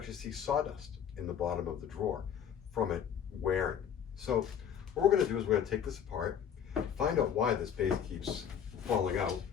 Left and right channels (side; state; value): right; quieter; 8.5 dB